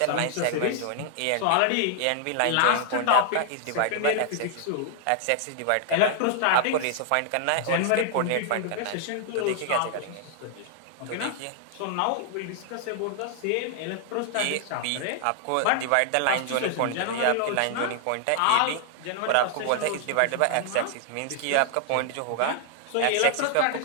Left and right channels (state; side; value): different; both; correlation -0.01